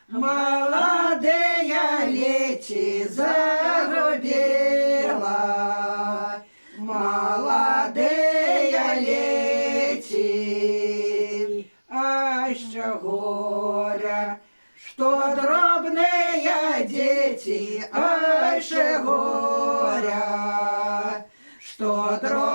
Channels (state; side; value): inverted; both; correlation -1.00